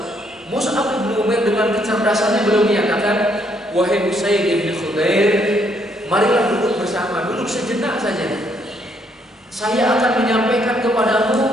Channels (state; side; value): normal; both; correlation 0.70